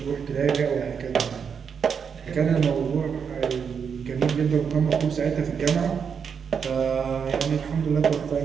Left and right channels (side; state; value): left; quieter; 6.7 dB